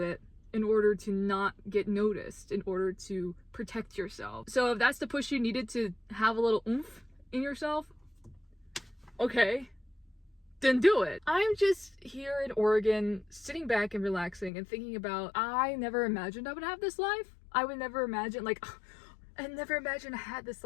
in order to not get noticed, in order to protect yourself. So if that's the push you needed to have a little oomph in yourself, okay, then do it. I'm just here in Oregon, sitting back and relaxing and thinking about, I never imagined I would have this life. I would never imagine, like, I never imagined I had this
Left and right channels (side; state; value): right; drops out; at 14.5 s